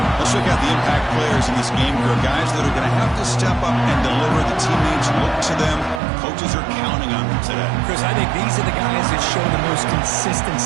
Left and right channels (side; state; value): left; drops out; at 6.0 s